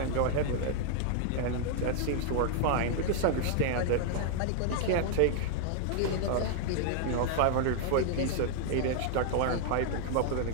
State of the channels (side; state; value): both; different; correlation 0.00